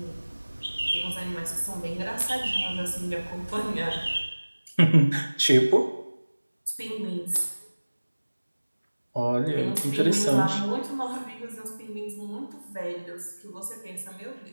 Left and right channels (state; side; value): inverted; both; correlation -1.00